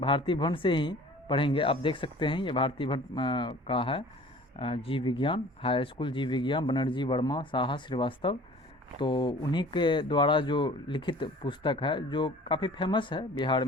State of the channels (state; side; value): normal; both; correlation 0.46